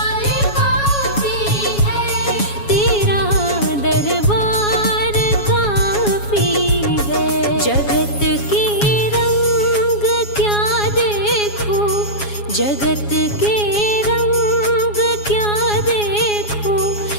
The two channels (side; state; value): right; late; 7.2 ms